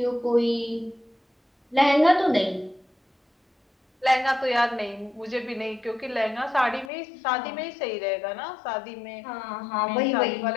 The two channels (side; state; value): right; drops out; at 6.9 s